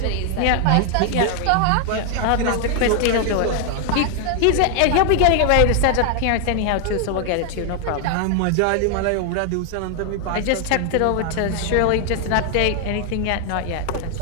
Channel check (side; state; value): both; different; correlation 0.00